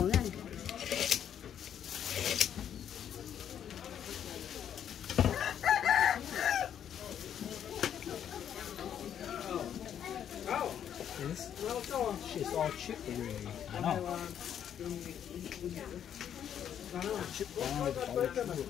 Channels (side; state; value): right; quieter; 9.3 dB